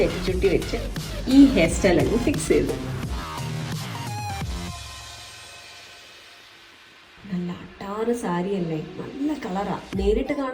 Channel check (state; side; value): identical; both; correlation 1.00